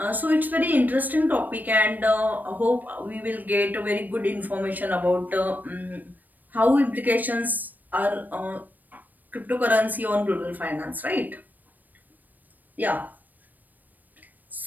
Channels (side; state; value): left; late; 0.086 ms